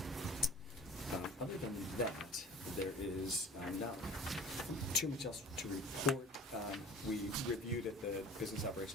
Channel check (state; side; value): normal; both; correlation 0.42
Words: Other than that, there is not too much else to report. We reviewed at the Business